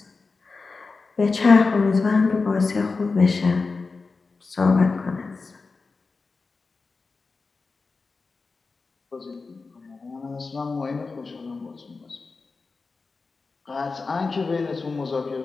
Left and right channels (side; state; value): right; quieter; 4.2 dB